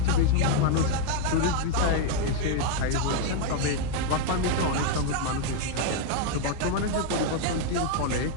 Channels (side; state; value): both; different; correlation 0.01